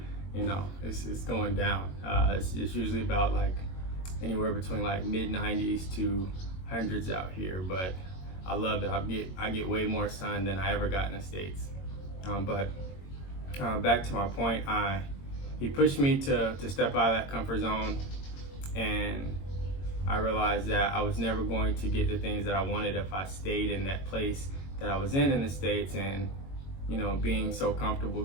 it's going down. It's usually about like anywhere between like mid-90s to hundreds out here, but I love it. I get way more sun than I ever got in the States. But back to my point, he pushed me to step out of that comfort zone, and I realized that I was never going to get the things that I wanted if I stayed in that place that I was in the States, and being so comfortable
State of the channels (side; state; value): right; late; 22 ms